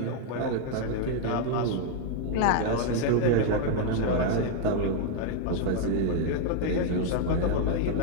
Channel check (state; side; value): different; both; correlation 0.00